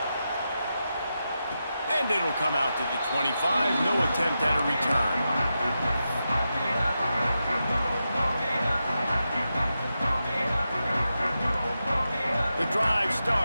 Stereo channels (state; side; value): inverted; both; correlation -0.89